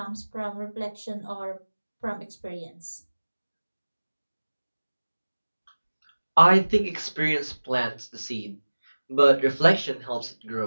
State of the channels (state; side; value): inverted; both; correlation -1.00